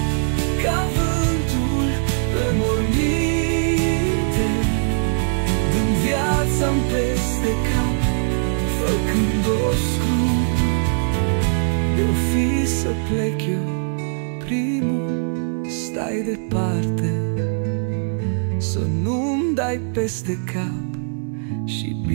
ca vântul pe morminte, dând viața-mi peste cap, făcând-o scrum. De-o fi să plec eu primul, stai departe, să nu-mi dai peste cap și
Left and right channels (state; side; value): silent; left; digital silence